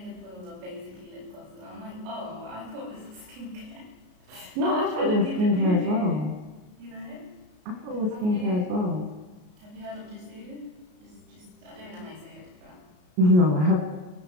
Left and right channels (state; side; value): late; left; 33 ms